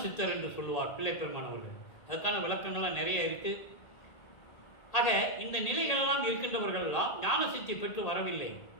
சித்தர் என்று சொல்லுவார் பிள்ளைப்பெருமானவர்கள். அதுக்கான விளக்கங்கள்லாம் நிறைய இருக்கு. ஆக இந்த நிலைகளெல்லாம் இருக்கின்றவர்கள் எல்லாம் ஞான சித்தி பெற்று வரவில்லை.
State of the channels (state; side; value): late; right; 1.8 ms